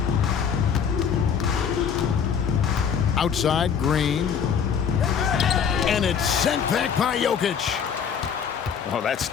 Outside, Green. And it's sent back by Jokic. Oh, that's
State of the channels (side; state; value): right; quieter; 7.3 dB